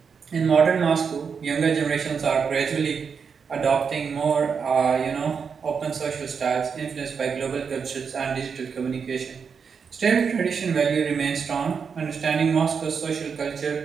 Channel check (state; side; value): quieter; left; 6.1 dB